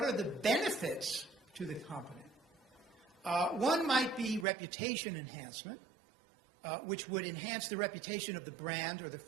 are the benefits to the company? One might be reputation enhancement, which would enhance the reputation of the brand or the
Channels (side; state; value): left; drops out; at 4.5 s